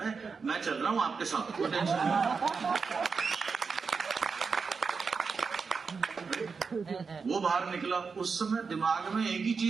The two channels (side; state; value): left; quieter; 5.1 dB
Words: मैं चल रहा हूँ आपके साथ, कोई टेंशन नहीं। वो बाहर निकला, उस समय दिमाग में एक ही